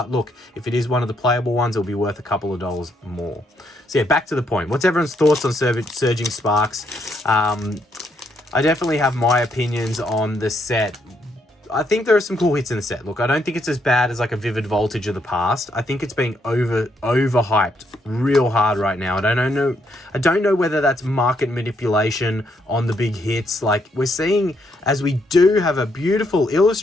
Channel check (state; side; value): normal; both; correlation 0.75